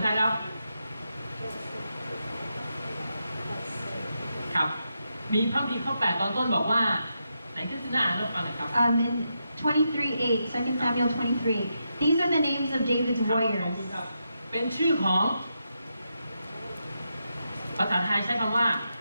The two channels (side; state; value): both; inverted; correlation -0.85